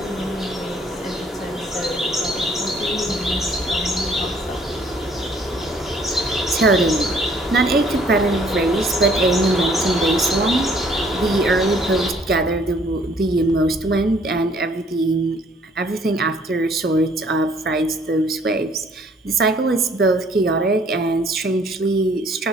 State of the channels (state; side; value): normal; both; correlation 0.61